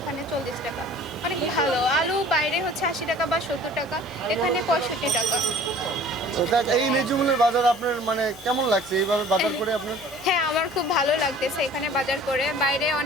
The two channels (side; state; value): both; normal; correlation 0.48